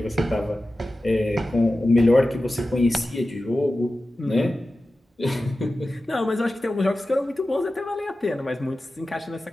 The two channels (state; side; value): normal; both; correlation 0.94